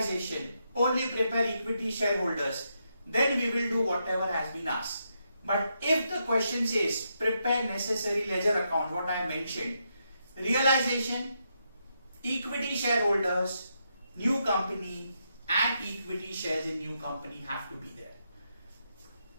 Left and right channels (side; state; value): both; inverted; correlation -0.81